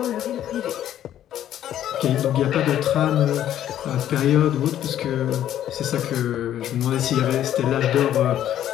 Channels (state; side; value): quieter; right; 11.4 dB